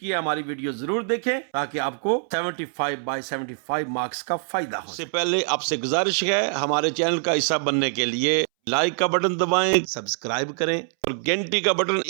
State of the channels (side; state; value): left; silent; 62 dB below the other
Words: हमारी वीडियो जरूर देखें ताकि आपको 75 बाय 75 मार्क्स का फायदा हो। इससे पहले आपसे गुजारिश है, हमारे चैनल का हिस्सा बनने के लिए लाइक का बटन दबाएं, सब्सक्राइब करें और घंटी का बटन